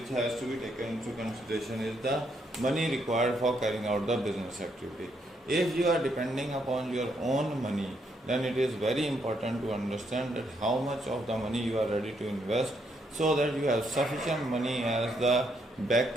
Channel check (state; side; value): normal; both; correlation 0.75